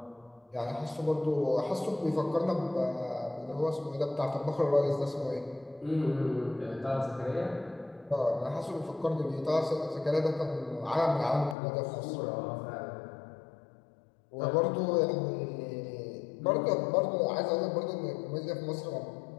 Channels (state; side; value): drops out; right; at 11.6 s